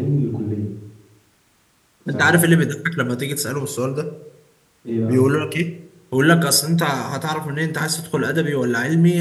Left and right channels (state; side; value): identical; both; correlation 1.00